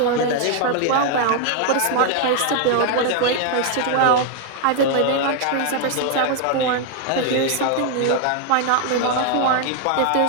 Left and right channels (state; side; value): different; both; correlation 0.00